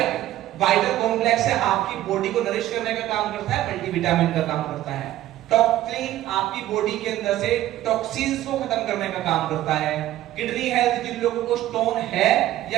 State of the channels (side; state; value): left; quieter; 14.2 dB